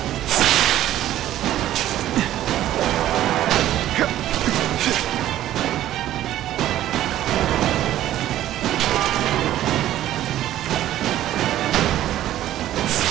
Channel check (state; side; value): quieter; left; 13.1 dB